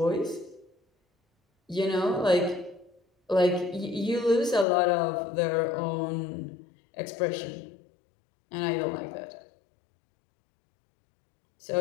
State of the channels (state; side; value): drops out; right; at 4.7 s